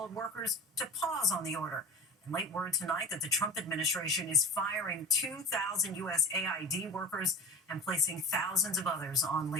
workers to pause on the order. And late word tonight that the Trump administration is firing 2,000 USAID workers and placing thousands of others on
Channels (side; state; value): both; normal; correlation 0.35